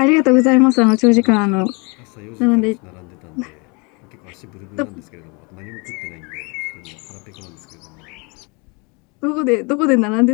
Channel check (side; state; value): right; quieter; 30.2 dB